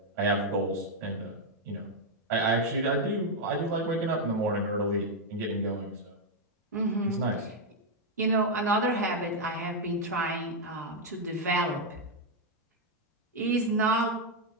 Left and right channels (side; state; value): both; normal; correlation 0.00